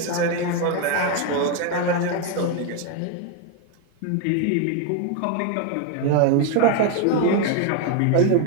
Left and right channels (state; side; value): different; both; correlation 0.01